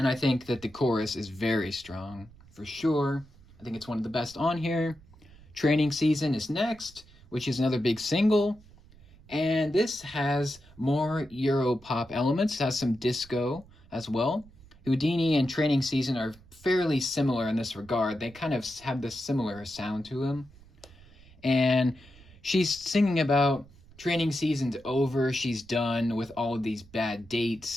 I think that the chorus is very strong for sure. I think it's one of the best on here. Training Season is next, which is another big single, and this has more Euro pop elements. It has some disco as well. Houdini and Training Season are fairly similar in this regard. They kind of have this similar sound to them, and she's singing about training season's over. She's done with all of these bad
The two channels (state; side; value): noise; right; rumble, 24 dB below the sound